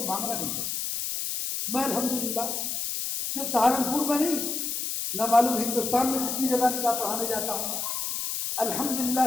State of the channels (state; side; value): noise; left; hiss, 2 dB below the sound